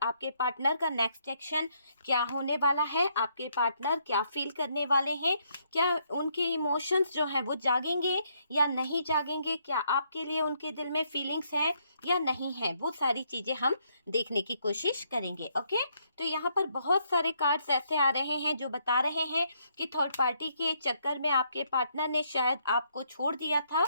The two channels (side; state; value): both; inverted; correlation -0.73